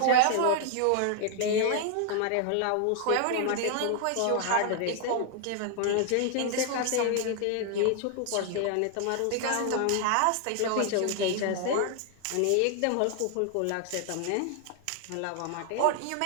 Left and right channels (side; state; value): both; different; correlation 0.00